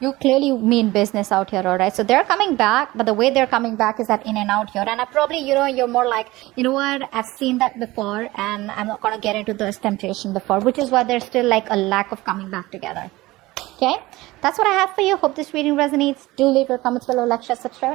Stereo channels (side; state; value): left; quieter; 19.3 dB